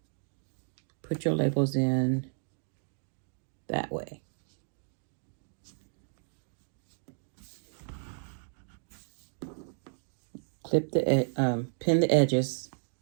put your labels in that way. Clip the pin the edges.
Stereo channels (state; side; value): silent; left; digital silence